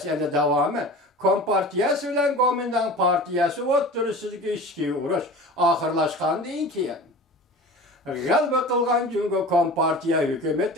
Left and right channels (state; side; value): normal; both; correlation 0.37